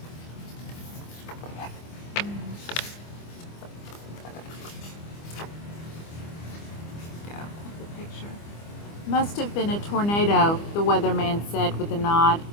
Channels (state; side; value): late; right; 25 ms